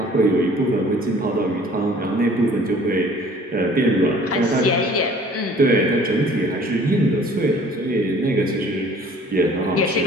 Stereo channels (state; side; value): normal; both; correlation 0.52